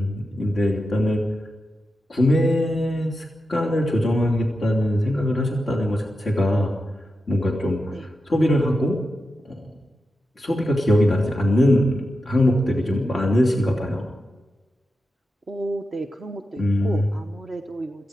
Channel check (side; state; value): both; normal; correlation 0.89